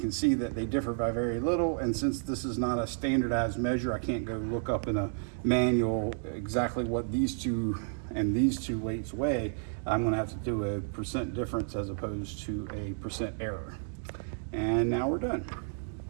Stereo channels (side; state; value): left; silent; digital silence